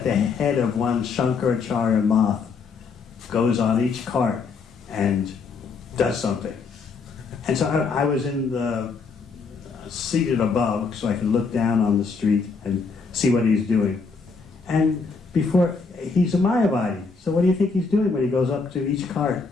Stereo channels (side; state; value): right; quieter; 4.7 dB